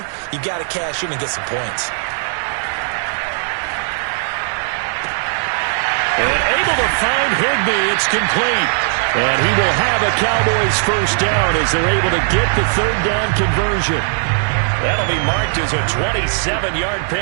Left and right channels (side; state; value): left; silent; digital silence